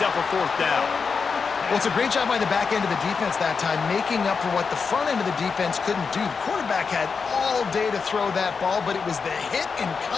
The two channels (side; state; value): right; quieter; 5.3 dB